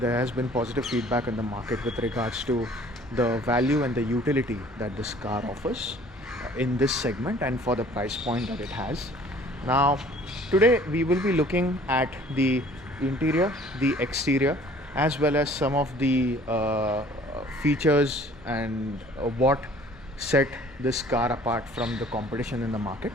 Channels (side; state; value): both; normal; correlation 0.53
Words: has been positive feedback in the market with regards to the value and the utility that this car offers in this segment and for the price point that it has. Now today we will be looking at the interior, the exterior, as well as some of the features and what set this car apart from the competition in the market,